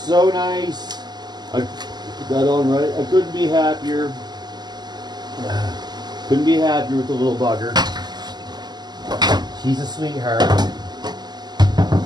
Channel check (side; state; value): left; late; 0.20 ms